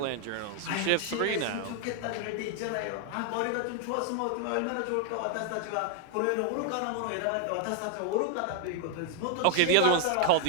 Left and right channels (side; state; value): both; different; correlation 0.00